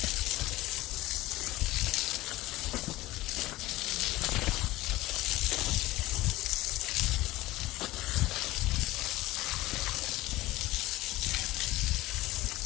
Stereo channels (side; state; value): right; quieter; 18.1 dB